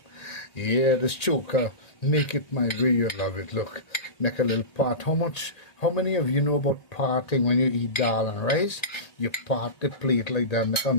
Yeah, this choker, make it my way, you love it. Look, make a little pot. How many of you know about parting when you eat dal and rice? You part the plate like that, make a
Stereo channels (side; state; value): right; late; 1.8 ms